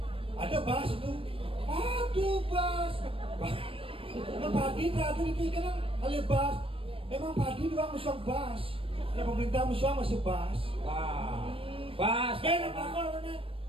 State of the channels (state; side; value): late; left; 0.26 ms